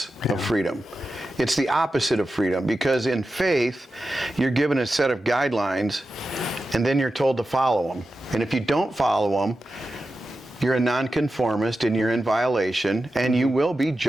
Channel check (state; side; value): normal; both; correlation 0.92